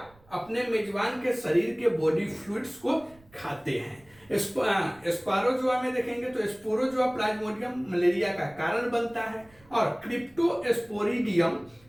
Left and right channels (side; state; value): right; noise; rumble, 28 dB below the sound